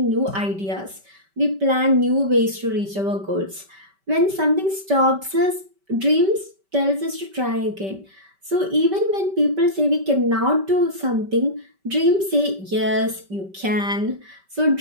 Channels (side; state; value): left; late; 5.2 ms